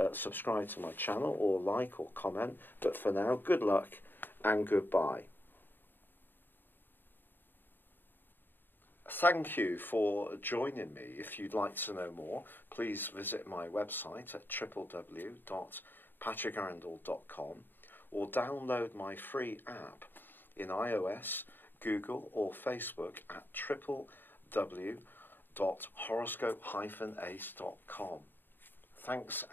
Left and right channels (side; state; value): right; late; 0.094 ms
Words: Subscribe to my channel or like or comment. But for now, good luck and goodbye. Thank you for joining me. If you'd like to know more, please visit my website at www.patrickarundell.com or download my free app in iOS, Google or Facebook at www.horoscope-ace.com. Thanks